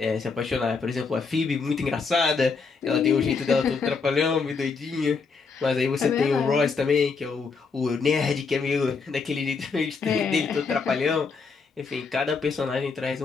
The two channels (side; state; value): right; quieter; 4.9 dB